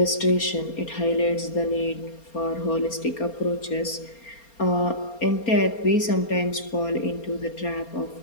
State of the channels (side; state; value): right; late; 4.3 ms